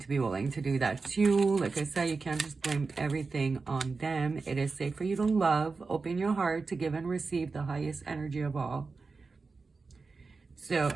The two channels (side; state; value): left; quieter; 4.3 dB